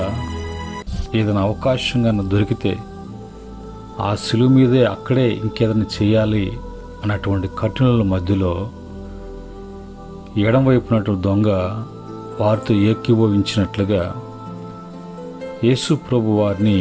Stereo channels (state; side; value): identical; both; correlation 1.00